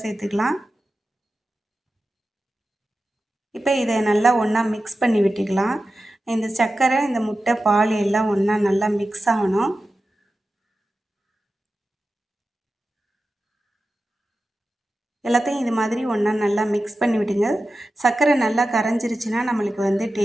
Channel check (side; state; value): both; normal; correlation 0.93